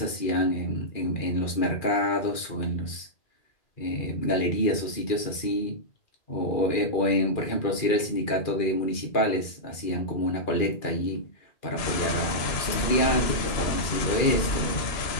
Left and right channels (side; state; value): right; late; 2.4 ms